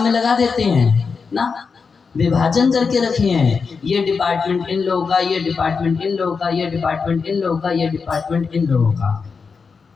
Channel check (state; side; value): quieter; right; 5.2 dB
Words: में लगा देते हैं? ना, विभाजन करके रखे हैं। ये डिपार्टमेंट इन लोगों का, ये डिपार्टमेंट इन लोगों का, ये डिपार्टमेंट इन लोगों का, ये डिपार्टमेंट इन लोगों का।